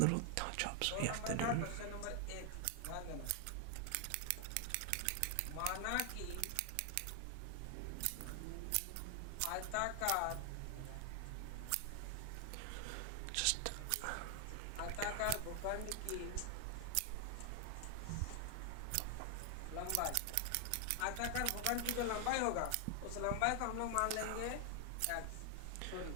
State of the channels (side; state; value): both; different; correlation 0.00